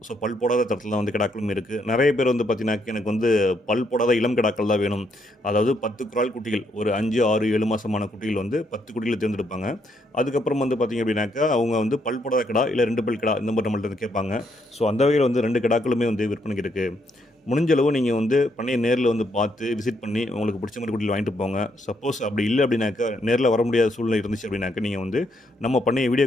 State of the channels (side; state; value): both; normal; correlation 0.75